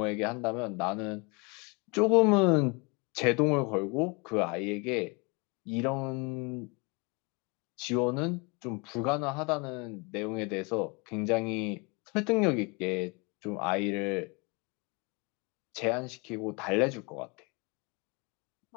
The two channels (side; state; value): right; quieter; 30.1 dB